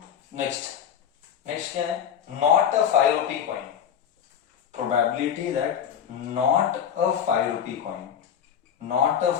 नेक्स्ट क्या है? Not a 5 rupee coin, probability that not a 5 rupee coin, not a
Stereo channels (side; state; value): right; quieter; 8.6 dB